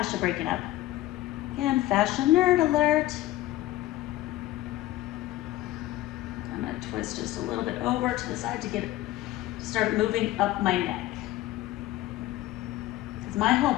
breaking up. Again, fascia nerd alert. I'm gonna twist just a little bit over to the side to get it, start moving up my neck. Because my whole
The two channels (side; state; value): right; quieter; 15.7 dB